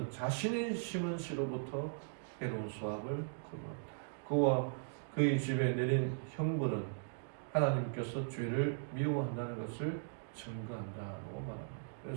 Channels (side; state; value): left; silent; digital silence